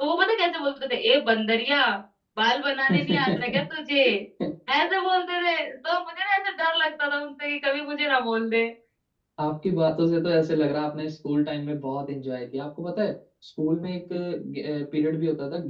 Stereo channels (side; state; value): both; identical; correlation 1.00